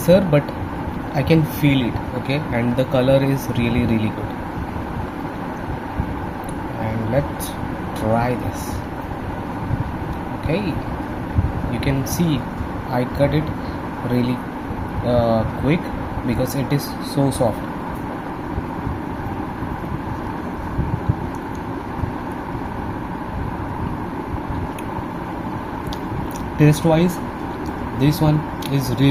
but I can feel it, okay, and the color is really good. And let's try this. Okay, you can see I cut it really quick because it is so soft. Taste wise, this one is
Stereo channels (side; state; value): both; identical; correlation 1.00